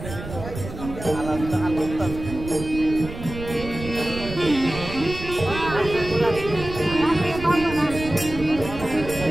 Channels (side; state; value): right; noise; rumble, 10 dB below the sound